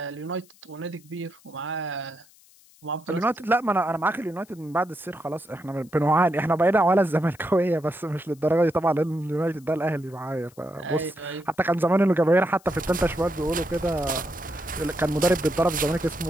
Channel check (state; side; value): noise; left; hiss, 28 dB below the sound